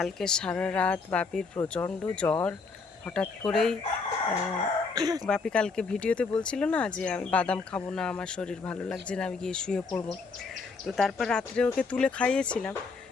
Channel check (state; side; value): quieter; right; 4.5 dB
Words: সারা রাত বাপির প্রচণ্ড জ্বর। হঠাৎ করেই বাপি কালকে ভিডিওতে বলছিল না যে আমি বাদাম খাবো না, আমার শরীর ভালো লাগছে না, আমি গিয়ে শুয়ে পড়বো। তো তারপর রাত্রে ওকে তুলে খাইয়েছিলাম,